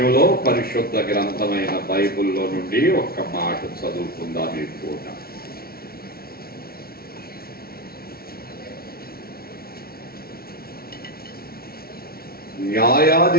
పరిశుద్ధ గ్రంథమైన బైబిల్లో నుండి ఒక్క మాట చదువుకుందాం ఈ పూట.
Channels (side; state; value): right; late; 0.44 ms